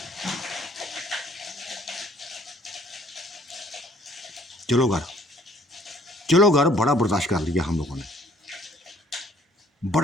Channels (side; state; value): both; normal; correlation 0.60